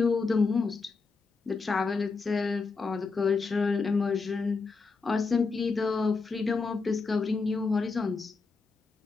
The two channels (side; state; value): right; quieter; 4.4 dB